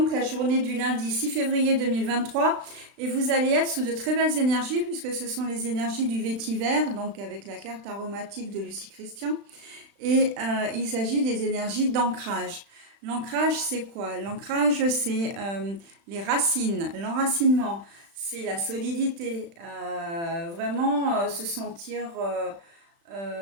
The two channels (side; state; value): left; late; 35 ms